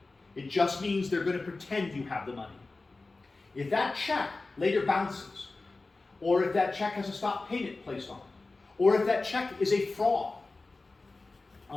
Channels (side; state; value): right; quieter; 3.5 dB